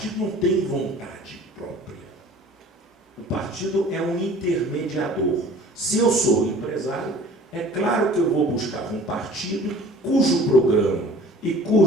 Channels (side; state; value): both; normal; correlation 0.47